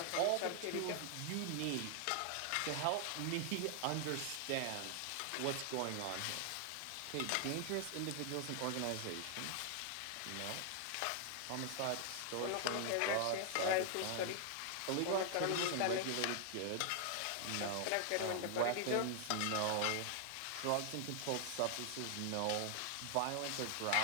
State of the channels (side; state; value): both; different; correlation 0.00